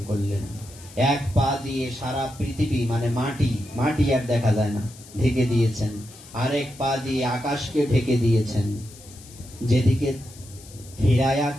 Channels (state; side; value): noise; left; hiss, 20 dB below the sound